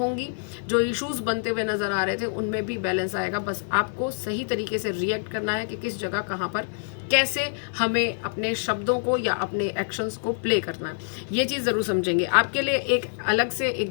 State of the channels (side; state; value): right; silent; 61 dB below the other